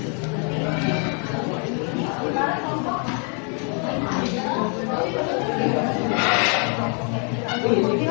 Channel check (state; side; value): quieter; right; 39.0 dB